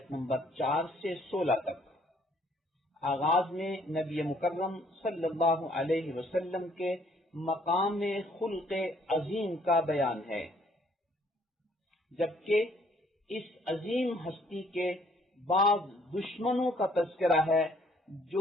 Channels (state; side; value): normal; both; correlation 0.63